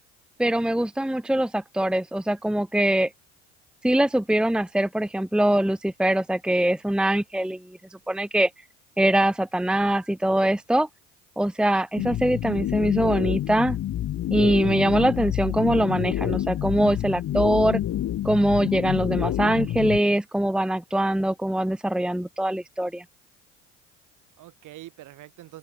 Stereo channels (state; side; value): normal; both; correlation 0.89